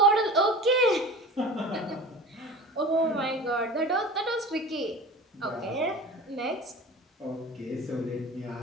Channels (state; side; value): normal; both; correlation 0.36